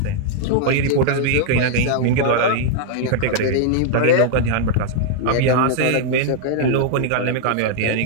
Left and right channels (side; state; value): both; different; correlation -0.01